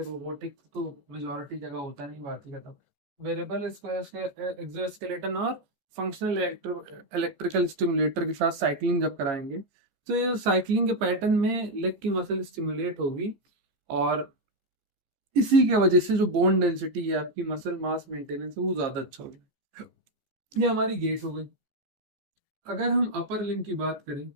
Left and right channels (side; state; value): left; late; 15 ms